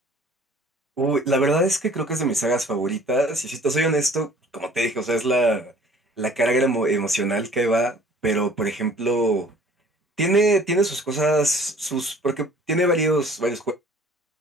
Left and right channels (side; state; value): both; normal; correlation 0.52